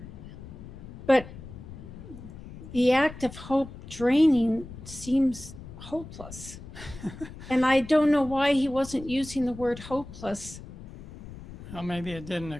but the act of hope draining seems hopeless. And I don't know why he wasn't using the word hopeless. Well, maybe it didn't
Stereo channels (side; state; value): left; noise; rumble, 14 dB below the sound